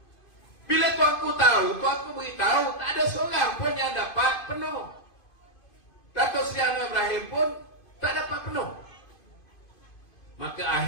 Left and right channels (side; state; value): right; late; 2.5 ms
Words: Bila tuanku tahu, tuanku beritahu tak ada seorang pun yang dapat penuh. Datuk Seri Anwar Ibrahim pun tak dapat penuh. Maka